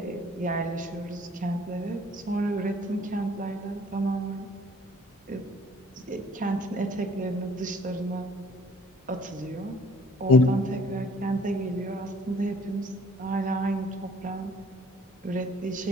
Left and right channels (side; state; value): both; normal; correlation 0.56